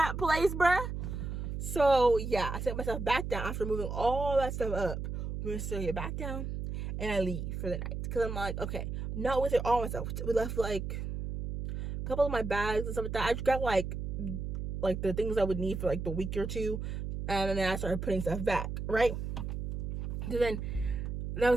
place, bruh. So yeah, I set myself back down after moving all that stuff up. We're gonna still get back down, and I leave for the night, because I'm like, okay, not with it all myself. We left like a couple of my bags and stuff like that. I just got like the things I would need for like the week or two, and then I started putting stuff back, right? So then that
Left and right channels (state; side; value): noise; right; hum, 4 dB below the sound